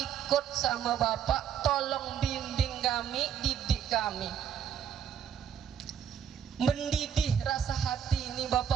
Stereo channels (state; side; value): quieter; left; 8.5 dB